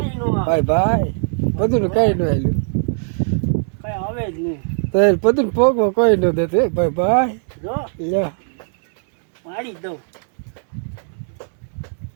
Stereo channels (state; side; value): silent; left; 66 dB below the other